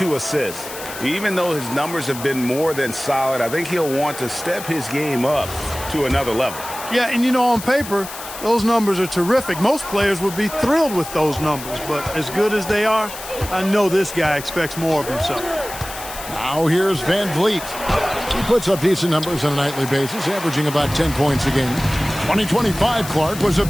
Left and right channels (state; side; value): noise; left; hiss, 12 dB below the sound